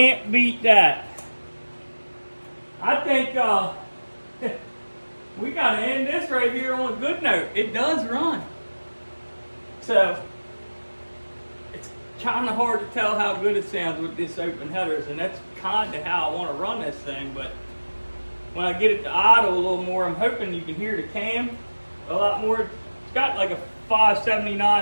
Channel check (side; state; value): both; inverted; correlation -1.00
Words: beat that. I think we gotta end this right here on a good note. It does run. So it's kind of hard to tell how good it sounds with this open headers, and that's kind of how I want to run this thing. But when I get it to idle a little more, I'm hoping you can hear the cam a lot more. It's got like a